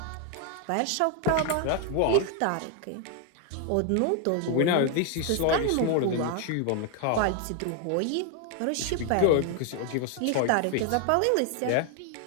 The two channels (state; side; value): different; both; correlation 0.00